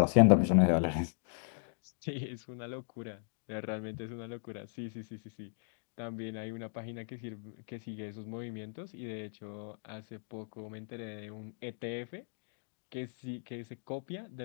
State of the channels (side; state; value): right; silent; digital silence